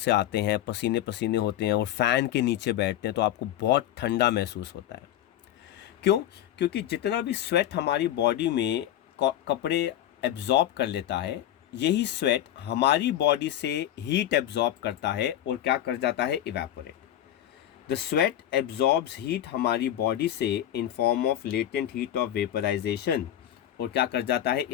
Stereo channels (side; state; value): right; quieter; 11.9 dB